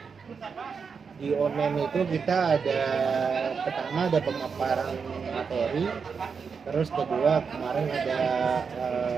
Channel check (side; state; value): left; quieter; 5.8 dB